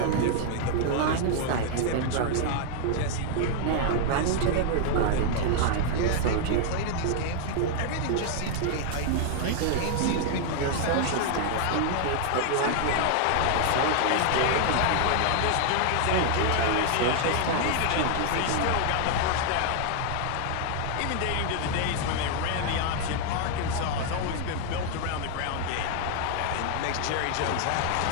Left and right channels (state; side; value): different; both; correlation 0.00